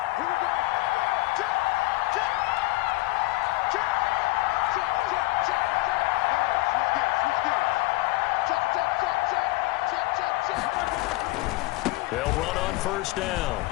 They'll run on first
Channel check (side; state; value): right; quieter; 20.5 dB